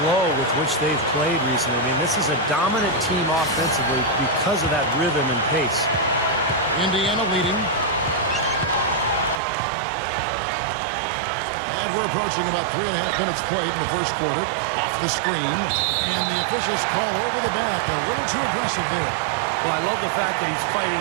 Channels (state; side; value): drops out; left; at 9.4 s